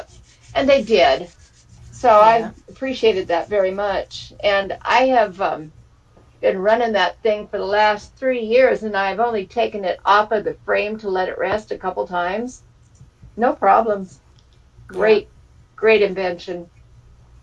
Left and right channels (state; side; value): identical; both; correlation 1.00